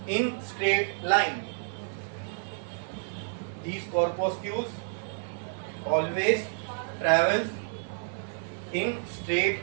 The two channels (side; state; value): left; silent; digital silence